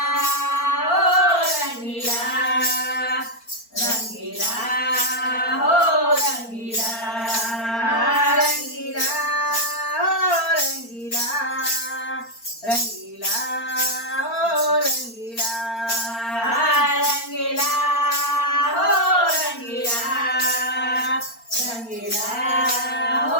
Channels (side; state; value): right; late; 4.4 ms